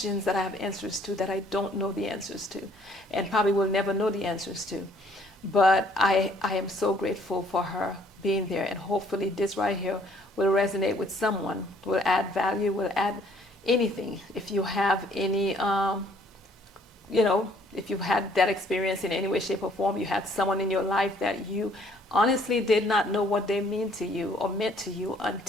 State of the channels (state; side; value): normal; both; correlation 0.61